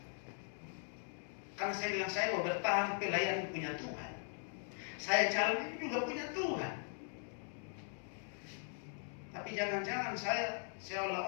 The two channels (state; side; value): silent; right; 51 dB below the other